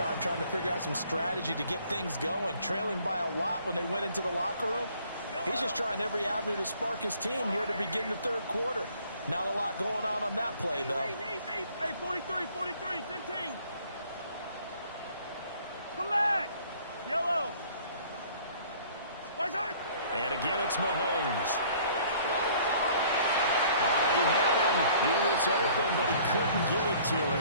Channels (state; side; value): inverted; both; correlation -0.56